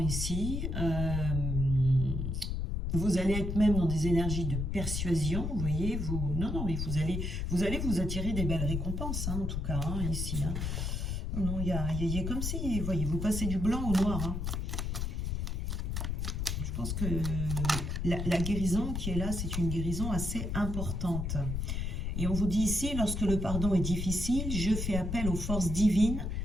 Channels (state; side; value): noise; left; rumble, 2 dB below the sound